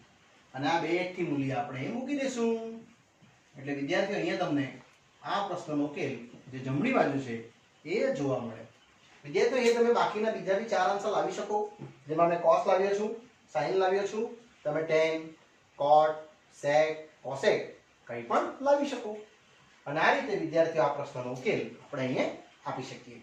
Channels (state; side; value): identical; both; correlation 1.00